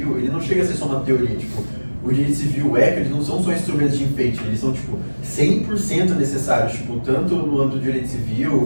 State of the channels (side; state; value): both; inverted; correlation -1.00